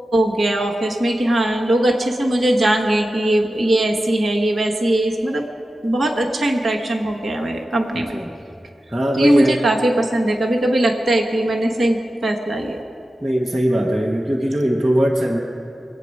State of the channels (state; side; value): normal; both; correlation 0.93